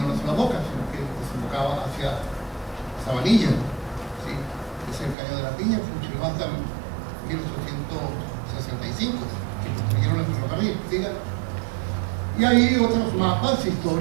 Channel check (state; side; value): drops out; left; at 5.2 s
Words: una sola boca, sino que desembocaba hacia Sabanilla. ¿Sí? Es el caño de la Piña, funcionó hasta 1865, que construyeron el ferrocarril. ¿Sí? Y hay otros mapas